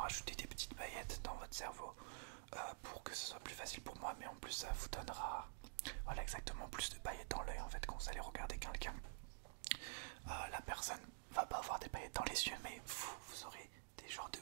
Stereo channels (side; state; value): left; silent; digital silence